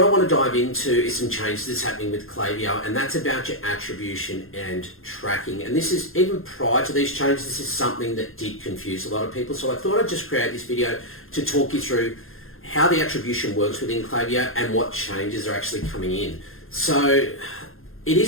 I want to dive into is some changes that's happening with Klaviyo, and that's about your attribution and tracking. And this is, even prior to these changes, this is something that did confuse a lot of people. So I thought I'd just create this video to talk you through how the attribution works within Klaviyo and what changes are actually coming in. So it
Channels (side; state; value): right; late; 0.60 ms